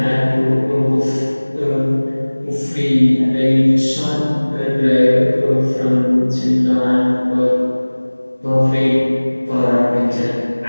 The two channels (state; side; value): inverted; both; correlation -1.00